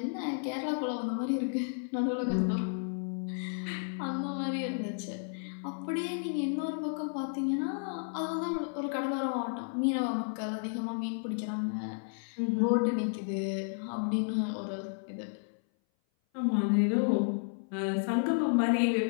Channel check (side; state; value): right; silent; 56 dB below the other